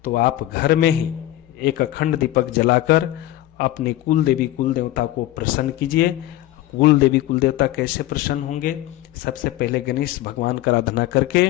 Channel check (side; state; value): right; quieter; 15.1 dB